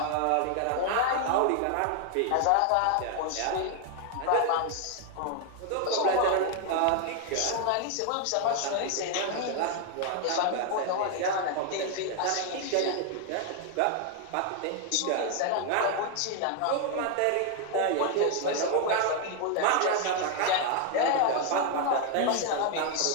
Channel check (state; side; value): different; both; correlation 0.00